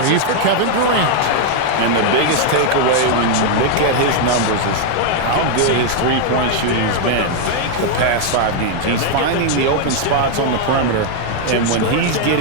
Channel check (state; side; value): different; both; correlation 0.00